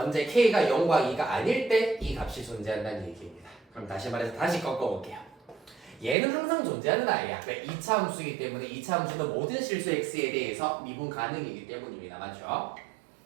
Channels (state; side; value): drops out; left; at 6.2 s